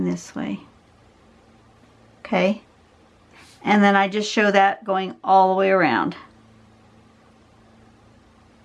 this way. Okay? And then I just show that going all the way around.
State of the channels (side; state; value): both; identical; correlation 1.00